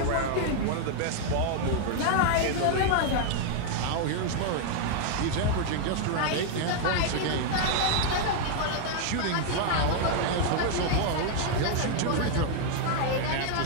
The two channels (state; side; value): different; both; correlation 0.00